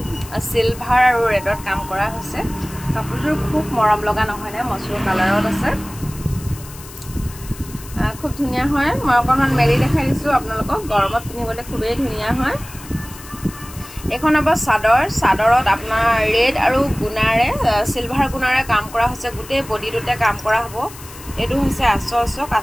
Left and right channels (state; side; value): noise; left; hiss, 17 dB below the sound